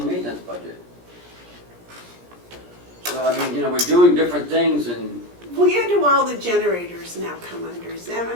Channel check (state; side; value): late; left; 17 ms